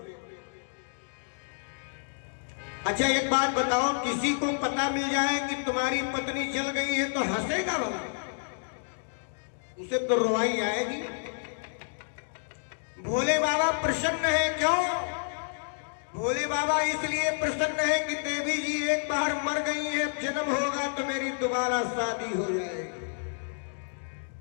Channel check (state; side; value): silent; right; digital silence